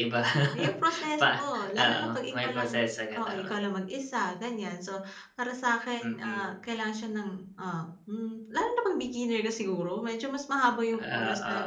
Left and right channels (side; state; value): both; identical; correlation 1.00